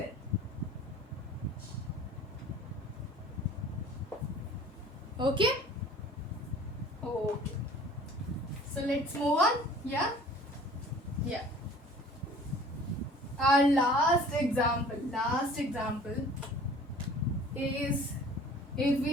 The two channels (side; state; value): both; normal; correlation 0.48